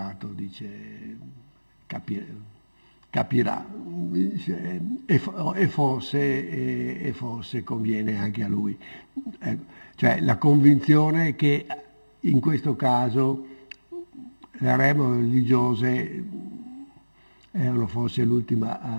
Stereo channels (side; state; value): both; inverted; correlation -1.00